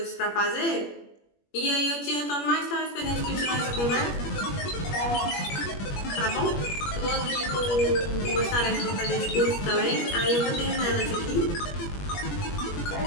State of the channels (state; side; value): late; right; 21 ms